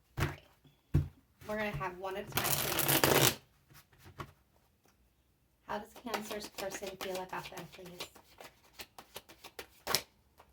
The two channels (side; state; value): both; identical; correlation 1.00